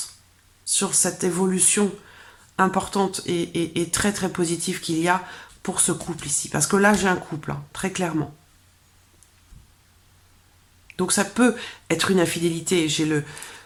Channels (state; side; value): identical; both; correlation 1.00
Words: sur cette évolution importante et très très positive qu'il y a pour ce couple ici. Parce que là, j'ai un couple, hein, très clairement. Donc ça peut être une infidélité. J'ai le